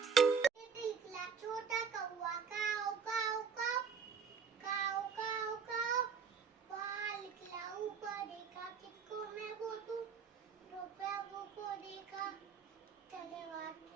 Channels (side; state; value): left; quieter; 6.4 dB